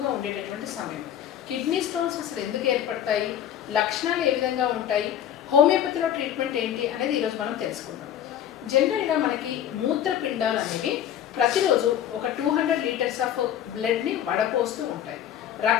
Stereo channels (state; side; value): quieter; right; 10.4 dB